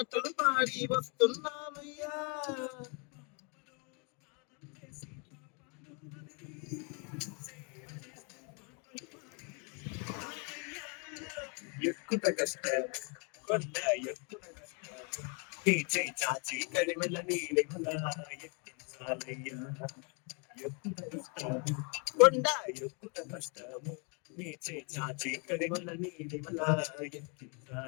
పాడి వస్తున్నామయ్యా ఎక్కుత కష్టం కొండ ఎక్కుత కష్టం నీ చేయి చాచి కడిమెల నీలిమల ఎక్కించాలయ్యా ఎక్కుత కష్టం కొండ ఎక్కుత కష్టము నీ చేయి చాచి కడిమెల నీలిమల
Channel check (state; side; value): quieter; right; 34.4 dB